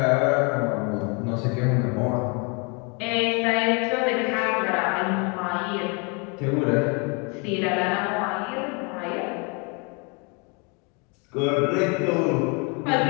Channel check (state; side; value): quieter; right; 32.2 dB